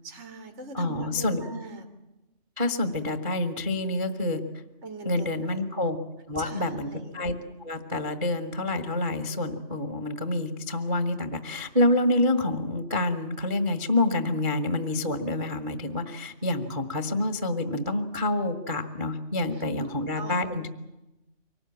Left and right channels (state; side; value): late; left; 2.4 ms